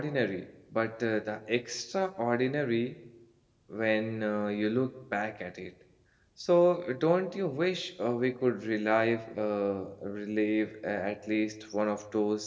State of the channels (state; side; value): identical; both; correlation 1.00